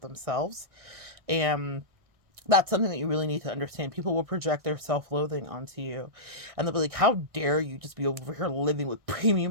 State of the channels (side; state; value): left; late; 1.6 ms